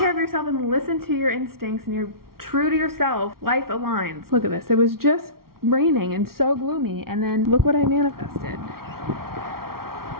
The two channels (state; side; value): late; left; 0.93 ms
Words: of yourself and listen to your instincts and you're true to yourself, life aligns. Look at this. It was just raining and so gloomy, and then look what I manifested.